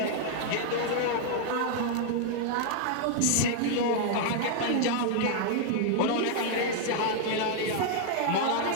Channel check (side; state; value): both; different; correlation 0.00